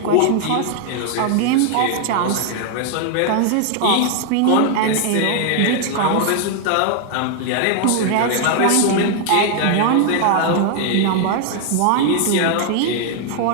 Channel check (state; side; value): different; both; correlation 0.00